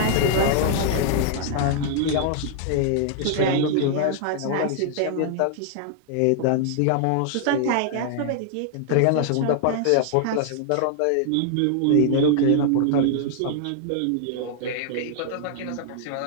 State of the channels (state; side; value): different; both; correlation -0.01